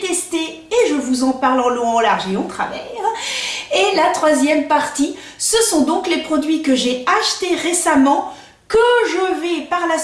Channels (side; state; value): both; identical; correlation 1.00